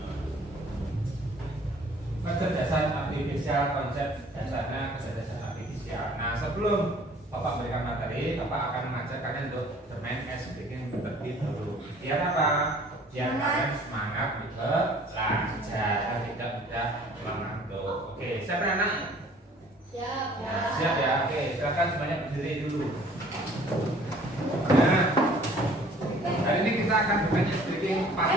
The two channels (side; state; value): both; normal; correlation 0.53